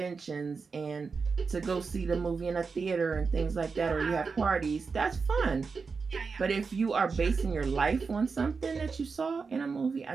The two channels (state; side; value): quieter; left; 4.9 dB